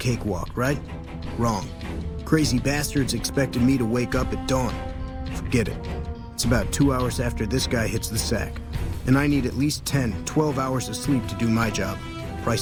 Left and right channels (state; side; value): identical; both; correlation 1.00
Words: right? Wrong. Crazy bastards expected me to wake up at dawn. Forget it. It's about 2 hours after this guy hits the sack. And I need at least 10, 12 hours of sleep to do my job.